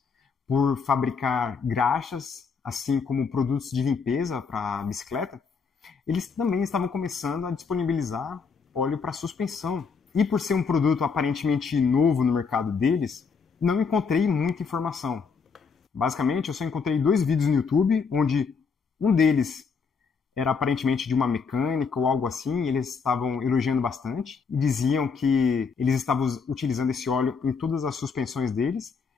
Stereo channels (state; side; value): quieter; right; 5.5 dB